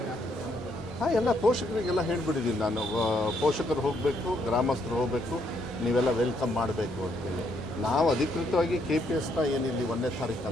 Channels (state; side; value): normal; both; correlation 0.73